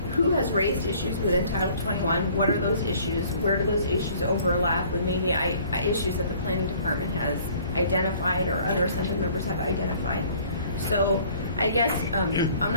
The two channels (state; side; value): inverted; both; correlation -0.55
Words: who has raised issues within Title 21. What are those issues? Where do those issues overlap with maybe issues that the planning department has identified or other assembly members have identified? So I guess I'm